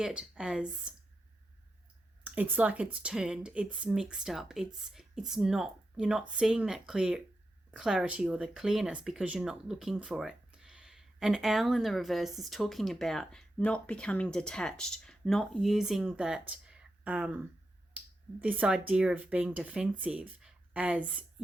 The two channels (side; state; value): both; normal; correlation 0.88